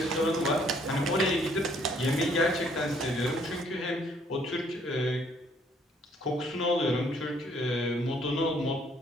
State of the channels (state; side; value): normal; both; correlation 0.64